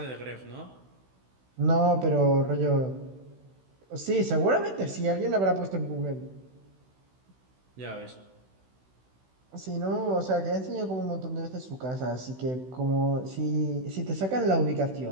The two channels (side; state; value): left; late; 16 ms